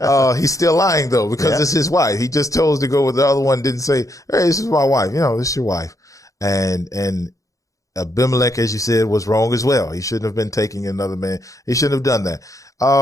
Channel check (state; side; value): late; right; 0.16 ms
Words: He's still lying though, because it's his wife. He just chose to go with the other one. Didn't say, "Hey, this is my wife." This is your wife. And Abimelech, as you said, was wrong as well. He shouldn't have been taking another man. He shouldn't have done that.